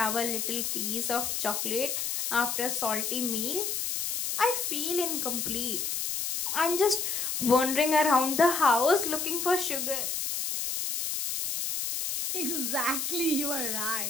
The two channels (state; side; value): noise; left; hiss, 2 dB below the sound